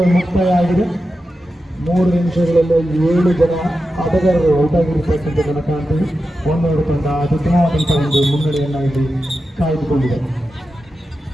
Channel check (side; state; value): both; normal; correlation 0.91